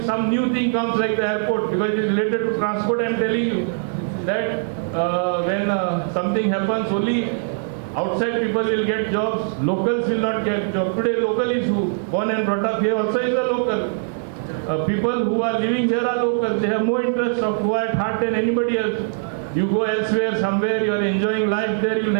some new thing comes like the airport, because it is related to transport, I am telling you that when something happens, only outside people will get jobs, locals will not get jobs. Today local is who? Born and brought up here also is a local. People who are living here are locals. They have more interest of who at heart than anybody else. You go elsewhere, somewhere, you are enjoying life there, you will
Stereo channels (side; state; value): left; silent; 60 dB below the other